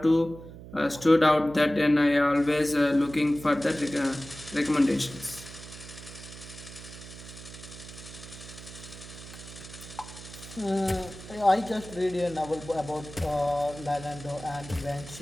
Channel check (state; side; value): noise; right; hum, 15 dB below the sound